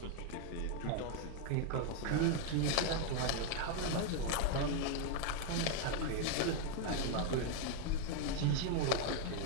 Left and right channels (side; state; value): both; different; correlation 0.01